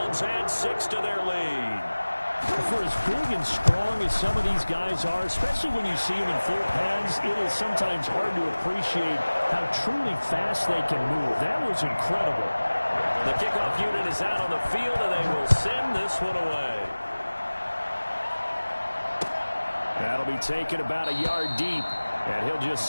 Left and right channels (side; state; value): both; inverted; correlation -1.00